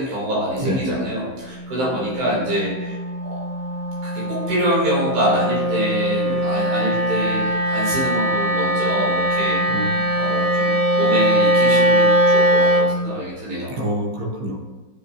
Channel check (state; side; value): late; left; 15 ms